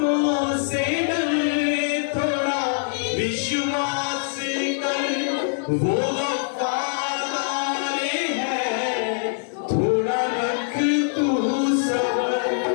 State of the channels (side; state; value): right; silent; digital silence